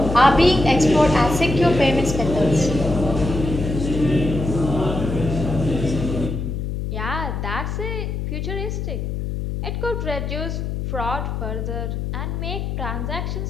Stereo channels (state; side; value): noise; left; hum, 3 dB below the sound